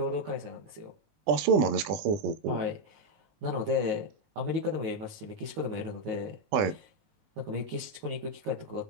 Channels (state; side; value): late; left; 20 ms